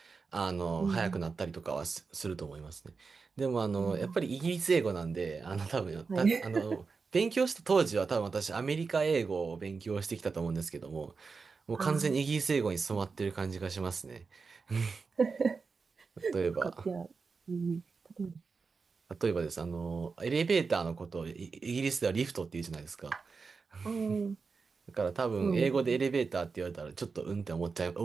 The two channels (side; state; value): left; quieter; 4.8 dB